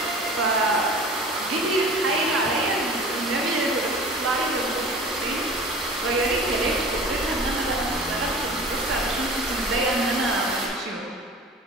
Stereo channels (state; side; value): normal; both; correlation 0.40